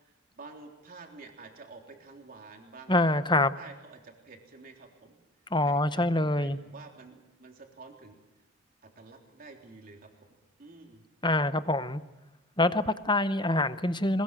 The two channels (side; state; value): both; normal; correlation 0.43